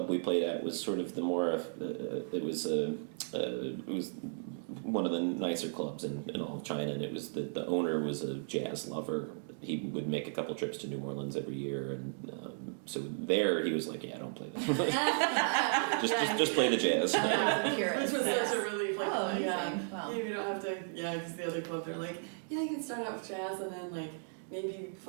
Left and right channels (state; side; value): silent; left; digital silence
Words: we played at was sort of the more it was one of the nicer clubs in all of China, and it was the owner was a jazz lover. He would make a couple trips to New Orleans every year, and so there he was like, don't play that. just play the jazz. Which was such a relief. Like, wow. We don't have to, because the other club, they're like, you can start out with jazz and then like maybe